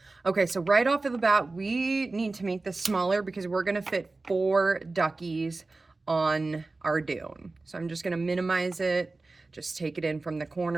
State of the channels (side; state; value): left; quieter; 3.4 dB